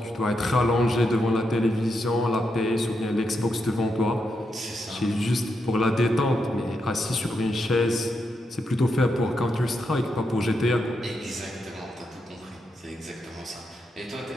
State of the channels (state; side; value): normal; both; correlation 0.83